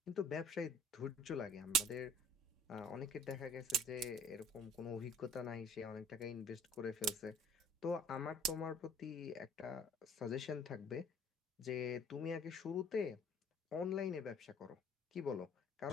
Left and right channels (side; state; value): both; normal; correlation 0.50